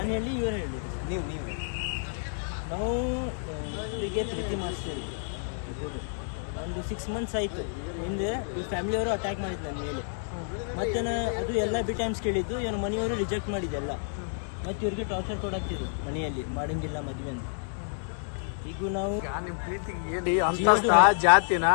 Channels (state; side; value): silent; right; digital silence